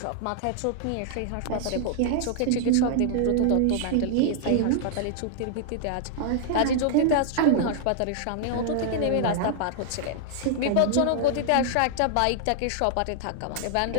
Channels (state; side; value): different; both; correlation -0.01